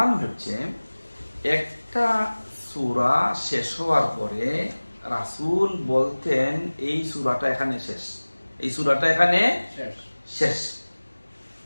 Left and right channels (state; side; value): inverted; both; correlation -1.00